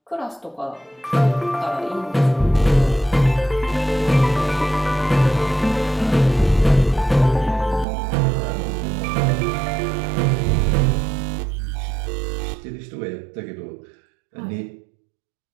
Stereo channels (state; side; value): drops out; left; at 7.9 s